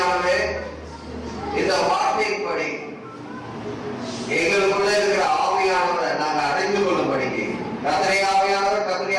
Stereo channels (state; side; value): identical; both; correlation 1.00